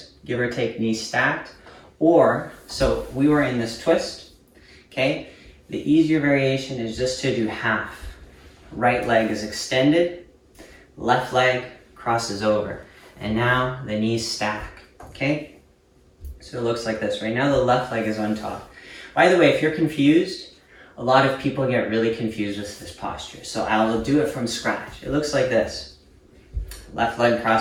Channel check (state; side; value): identical; both; correlation 1.00